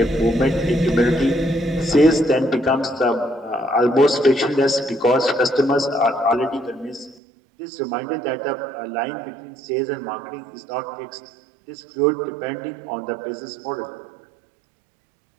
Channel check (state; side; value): drops out; left; at 7.2 s